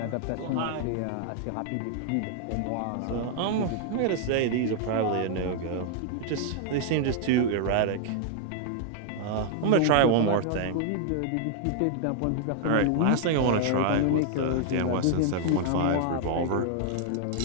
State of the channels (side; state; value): both; different; correlation 0.00